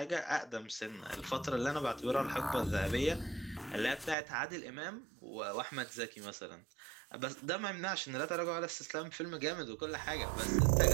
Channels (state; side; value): drops out; left; at 4.2 s